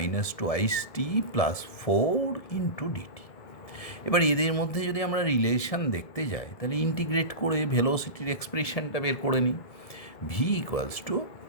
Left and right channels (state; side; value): late; right; 1.7 ms